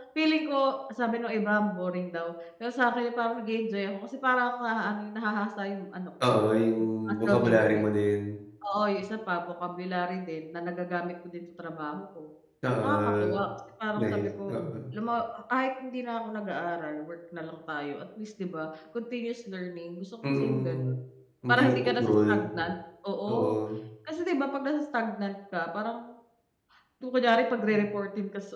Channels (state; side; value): identical; both; correlation 1.00